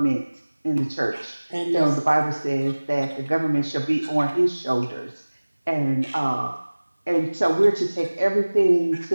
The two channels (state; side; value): inverted; both; correlation -1.00